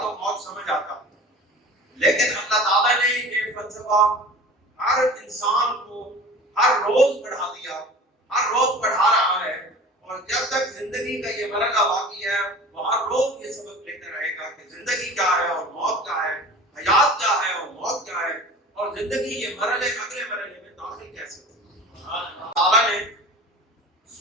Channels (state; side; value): normal; both; correlation 0.39